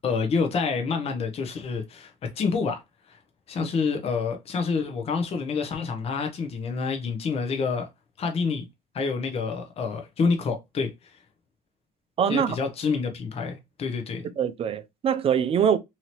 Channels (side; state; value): both; normal; correlation 0.56